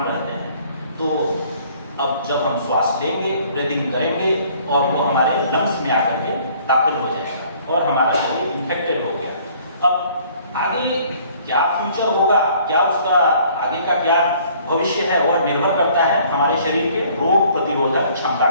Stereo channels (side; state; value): both; inverted; correlation -0.58